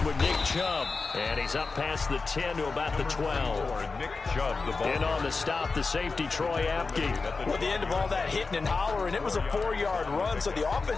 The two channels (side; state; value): right; quieter; 4.2 dB